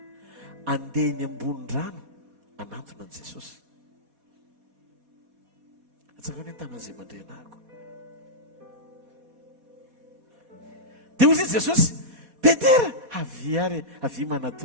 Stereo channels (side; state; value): left; late; 4.2 ms